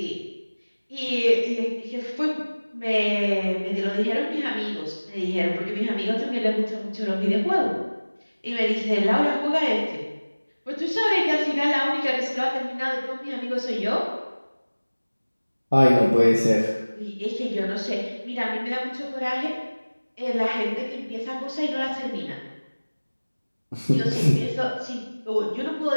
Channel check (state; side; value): inverted; both; correlation -1.00